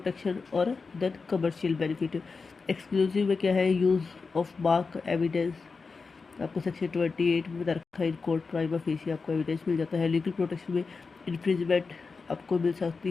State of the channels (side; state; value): right; quieter; 4.6 dB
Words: और देन कमर्शियल बेनिफिट। एक्सक्लूसिव में क्या है, यूज़ ऑफ मार्क एविडेंस, आपको सेक्शन 28 में बता रखा है, इन कोर्ट प्राइमा फेसी आपको एविडेंस मिल जाता है। लीगल प्रोटेक्शन में इन्फ्रिंजमेंट आपको मिल